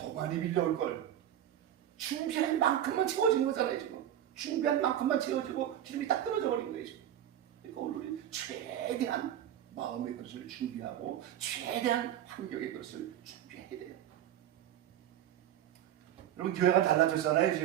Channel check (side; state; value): left; quieter; 11.1 dB